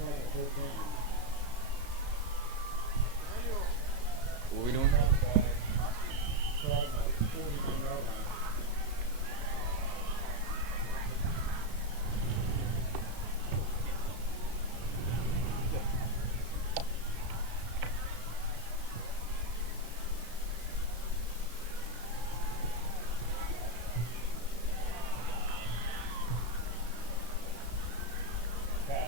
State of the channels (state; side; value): late; left; 34 ms